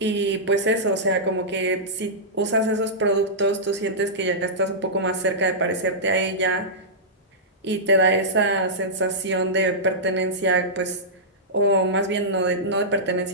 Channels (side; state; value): both; normal; correlation -0.13